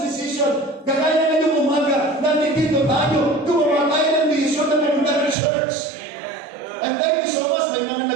decision. Kagaya na yung umaga, nandito tayo, gumawa tayo ng decision na maganda ng church. And thank you so much, may mga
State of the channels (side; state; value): left; drops out; at 5.4 s